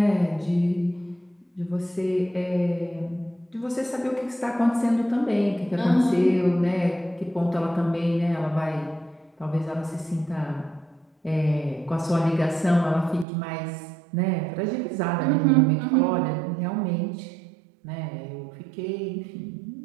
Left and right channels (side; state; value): left; drops out; at 13.2 s